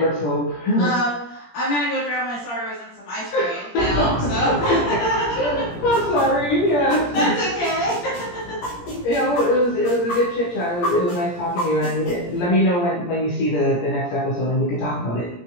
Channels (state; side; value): late; right; 17 ms